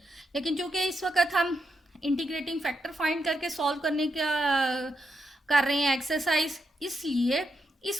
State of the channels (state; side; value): normal; both; correlation 0.83